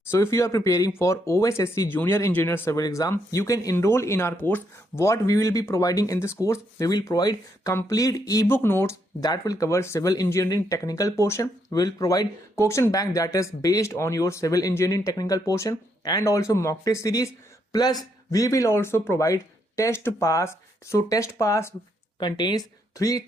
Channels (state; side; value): normal; both; correlation 0.76